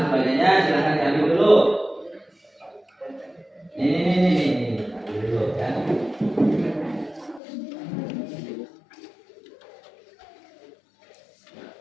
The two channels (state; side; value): drops out; right; at 7.4 s